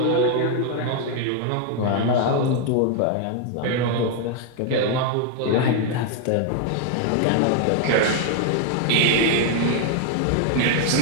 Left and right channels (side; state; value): both; different; correlation 0.00